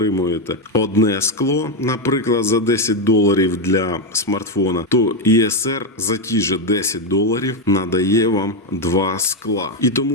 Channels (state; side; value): normal; both; correlation 0.06